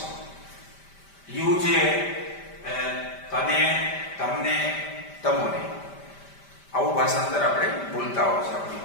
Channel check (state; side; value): late; right; 5.1 ms